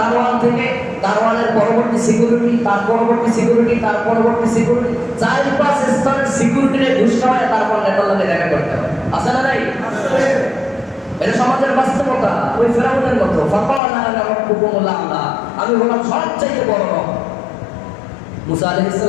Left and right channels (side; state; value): right; drops out; at 13.8 s